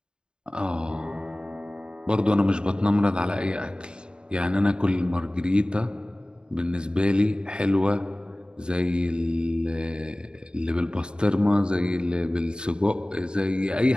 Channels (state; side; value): late; left; 0.050 ms